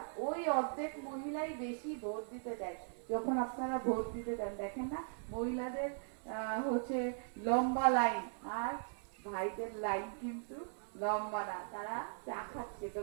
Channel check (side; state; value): left; silent; 52 dB below the other